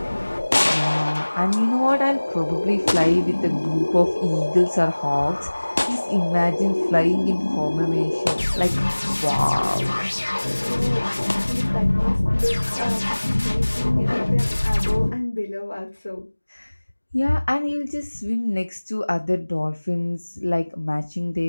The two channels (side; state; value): both; inverted; correlation -1.00